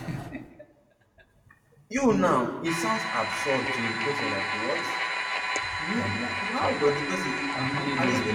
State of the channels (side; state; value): both; identical; correlation 1.00